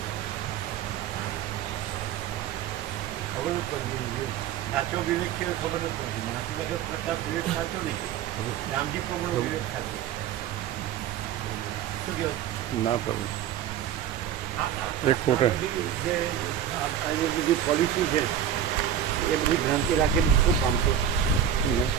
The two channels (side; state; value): left; quieter; 9.6 dB